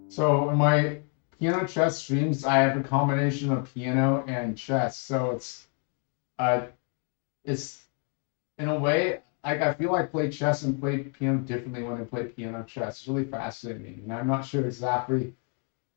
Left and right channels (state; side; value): quieter; right; 39.8 dB